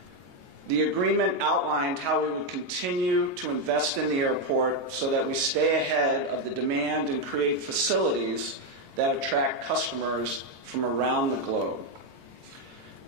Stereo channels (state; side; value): late; left; 22 ms